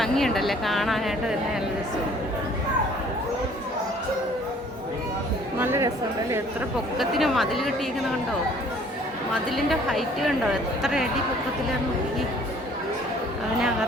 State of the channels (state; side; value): normal; both; correlation 0.56